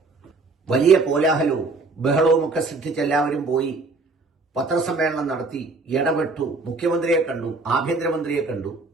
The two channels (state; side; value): quieter; left; 3.7 dB